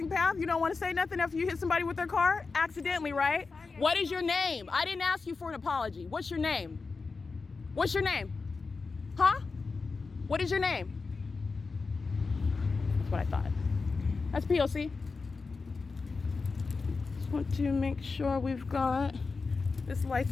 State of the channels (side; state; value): right; quieter; 4.3 dB